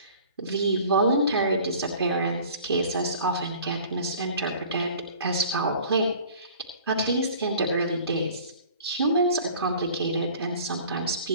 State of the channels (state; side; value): inverted; both; correlation -0.47